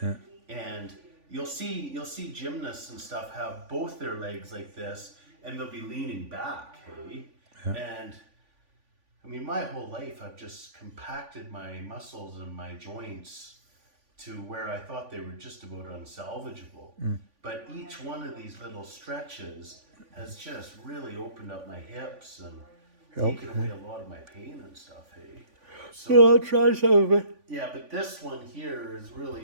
And you'll see gymnasts and stuff have both their legs like this, and they'll be leaning back, hey? Yeah. And I mean, my whole life I've just compacted my muscles and my joints to where I thought they were just about unsalvageable. But each one of these little stretches has just really opened up my hips and taken away a lot of my pain and stuff, hey? So, Well, I'll try some of it. yeah, but this one here is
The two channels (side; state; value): left; late; 3.5 ms